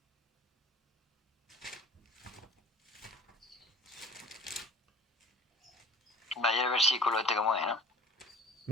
Vaya el versículo este como es, ¿no?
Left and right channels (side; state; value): both; normal; correlation 0.46